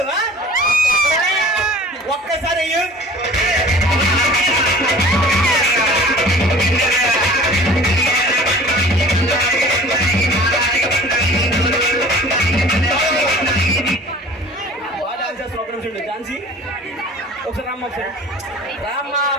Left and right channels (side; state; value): both; normal; correlation 0.45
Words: ఒక్కసారి అయ్యు. ఝాన్సీ ఒకసారి రామ్మ, ఒకసారి రామ్మ.